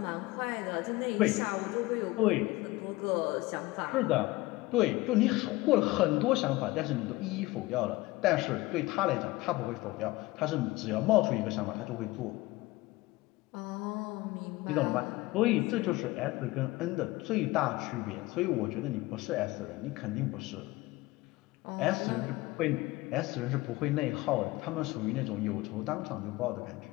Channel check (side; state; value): right; quieter; 20.1 dB